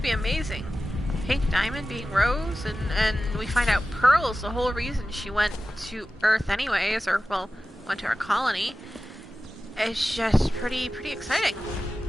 be amazing. Pink Diamond being Rose, and we find out Pearl's the whole reason she went to Earth anyways, or, well, went to our colony. It's just pretty exciting,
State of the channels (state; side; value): normal; both; correlation 0.94